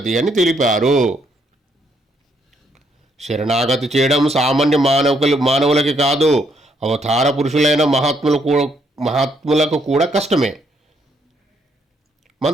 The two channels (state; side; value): normal; both; correlation 0.73